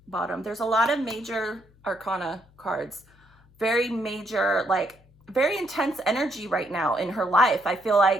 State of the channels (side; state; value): left; noise; hum, 29 dB below the sound